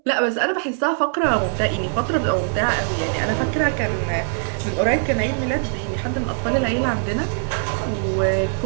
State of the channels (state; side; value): silent; left; digital silence